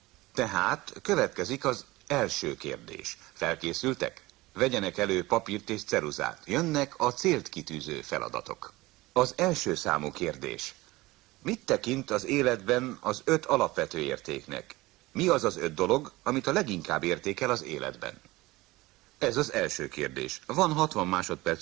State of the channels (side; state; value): left; quieter; 19.9 dB